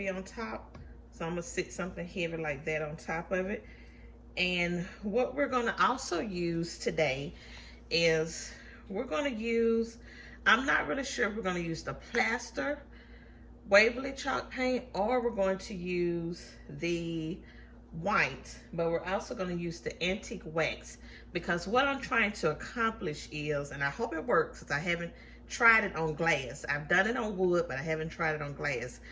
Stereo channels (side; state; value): both; identical; correlation 1.00